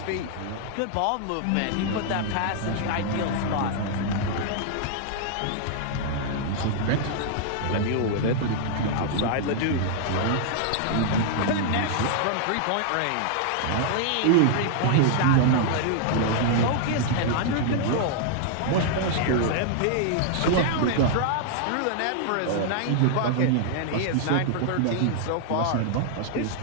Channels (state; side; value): different; both; correlation -0.01